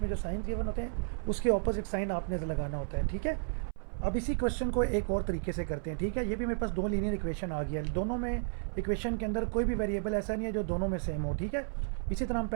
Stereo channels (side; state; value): left; silent; 56 dB below the other